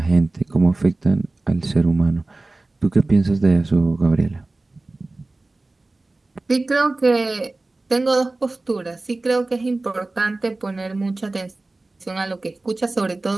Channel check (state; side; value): quieter; left; 3.1 dB